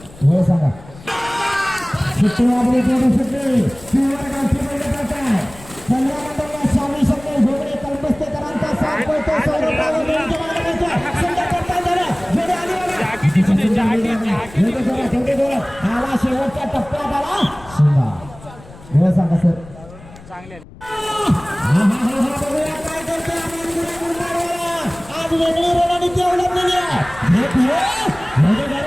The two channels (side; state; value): left; noise; rumble, 19 dB below the sound